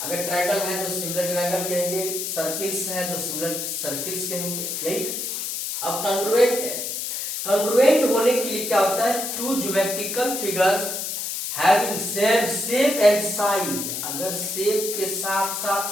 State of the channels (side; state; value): left; noise; hiss, 4 dB below the sound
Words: ट्रायंगल है तो सिमिलर ट्रायंगल कहेंगे, सर्किल्स है तो सिमिलर सर्किल्स कहेंगे। यही। अब कॉन्ग्रुएंट है। कॉन्ग्रुएंट होने के लिए क्या होता है? Two geometrical figures having same shape and size. अगर शेप के साथ साथ